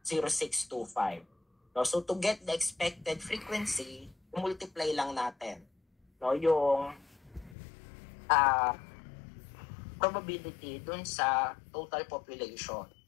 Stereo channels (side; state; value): right; drops out; at 7.6 s